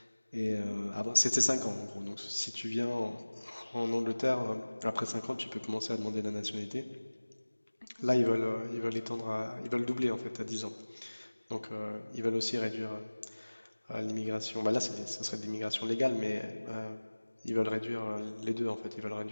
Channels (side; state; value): both; inverted; correlation -1.00